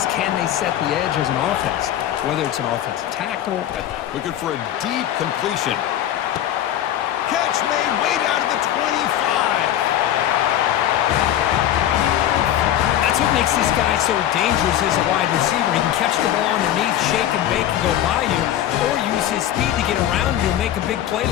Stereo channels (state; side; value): quieter; right; 11.7 dB